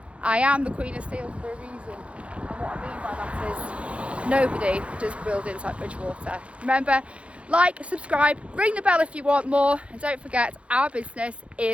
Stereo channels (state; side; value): late; left; 0.061 ms